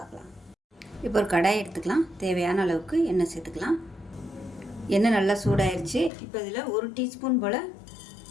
இப்போ ஒரு கடாய் எடுத்துக்கலாம். தேவையான அளவுக்கு எண்ணெய் சேர்த்துக்கலாம். எண்ணெய் நல்லா சூடாயிருச்சு. இப்போ இதில் 1 டீஸ்பூன் போல்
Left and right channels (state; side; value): drops out; right; at 6.1 s